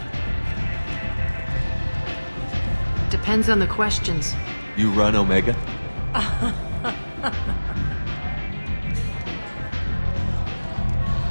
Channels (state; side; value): inverted; both; correlation -1.00